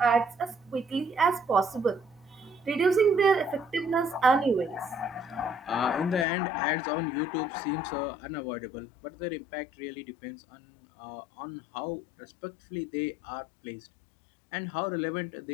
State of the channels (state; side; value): drops out; right; at 6.2 s